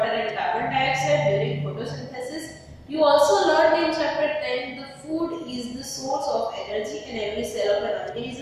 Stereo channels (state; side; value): identical; both; correlation 1.00